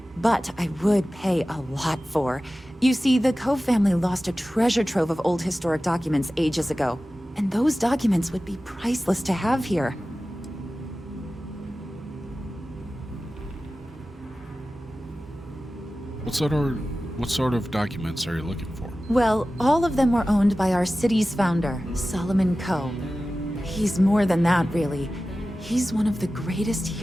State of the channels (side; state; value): both; normal; correlation 0.95